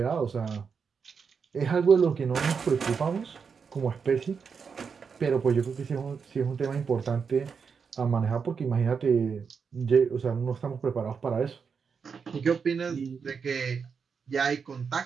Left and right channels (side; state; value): left; quieter; 5.9 dB